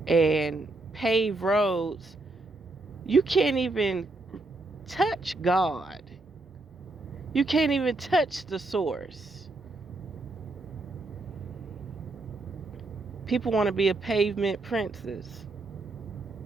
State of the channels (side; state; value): left; quieter; 3.0 dB